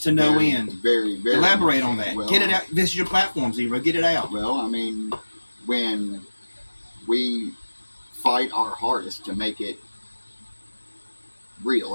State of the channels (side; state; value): both; inverted; correlation -1.00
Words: to no end. Very, very. Elaborate on that. Well, get it out. This is your platform, Zero. Get it out. Well, I mean, when we fight our hardest to make it